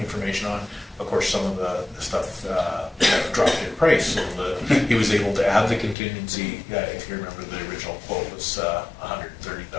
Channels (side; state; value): right; drops out; at 6.0 s